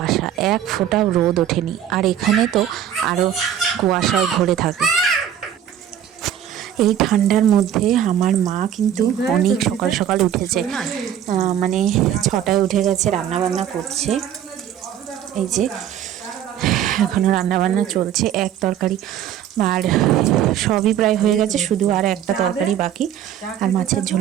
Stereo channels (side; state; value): left; quieter; 10.0 dB